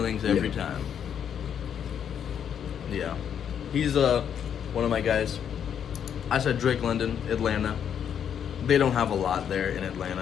every time. Yeah, he's one of my guys. I said Drake London, Atlanta. They don't have a lot there in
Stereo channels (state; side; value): quieter; right; 8.5 dB